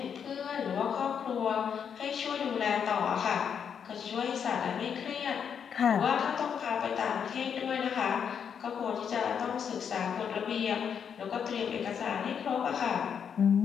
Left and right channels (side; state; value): right; quieter; 7.5 dB